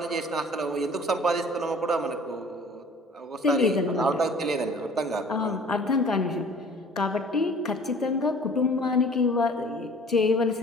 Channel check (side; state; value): both; normal; correlation 0.49